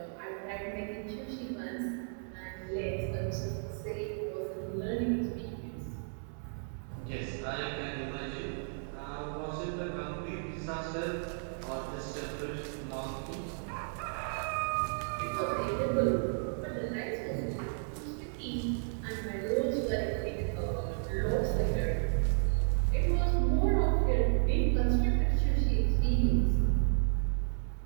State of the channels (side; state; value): left; silent; digital silence